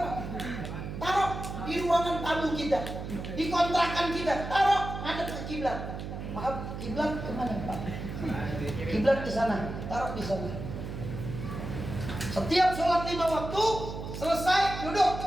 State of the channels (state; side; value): noise; right; hum, 7 dB below the sound